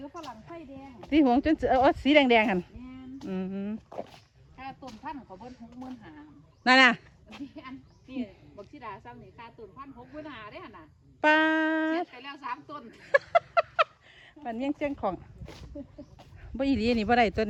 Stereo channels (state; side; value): identical; both; correlation 1.00